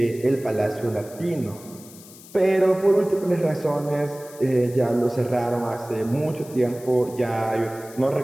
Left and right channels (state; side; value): noise; left; hiss, 20 dB below the sound